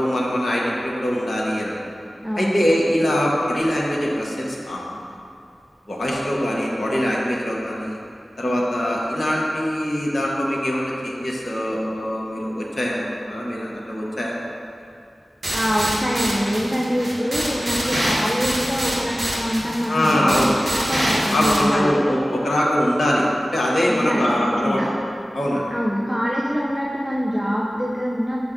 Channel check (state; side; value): normal; both; correlation 0.96